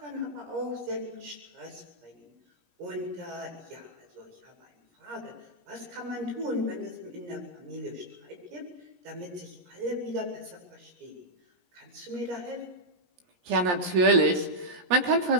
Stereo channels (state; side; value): late; left; 17 ms